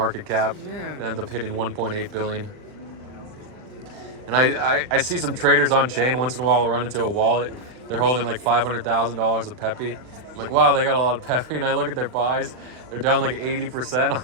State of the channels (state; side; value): late; left; 39 ms